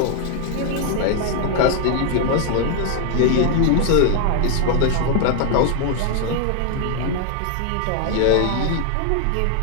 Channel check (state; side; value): different; both; correlation 0.00